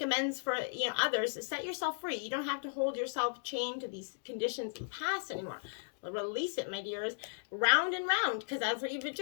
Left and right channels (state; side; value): silent; right; digital silence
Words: amends for, you know, others. Set yourself free. You don't have to hold yourself chained to these conditions of the past anymore. Release it, my dears. Round and round, because that's what you've been